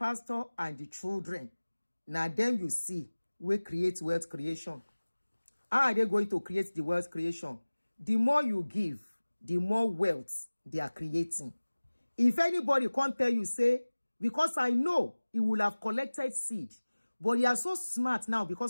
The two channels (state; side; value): inverted; both; correlation -1.00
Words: and the children, now them you see, we create wealth creation. How are they going to create the wealth creation? The more you give, the more wealth they are creating. If anybody can't tell you, say, because I know he will have collected seed, but they are so smart now